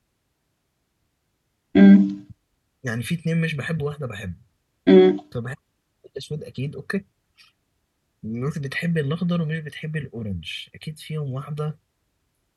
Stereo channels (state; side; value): identical; both; correlation 1.00